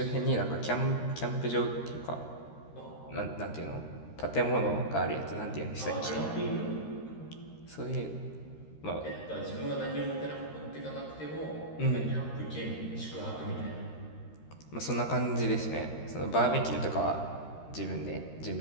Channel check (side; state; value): right; late; 13 ms